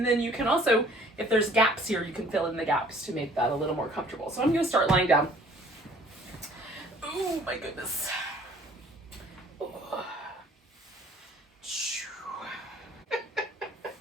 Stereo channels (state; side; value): normal; both; correlation 0.55